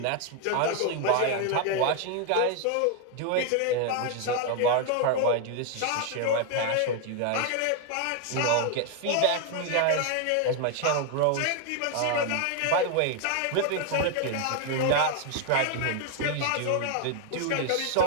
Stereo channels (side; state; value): both; different; correlation 0.01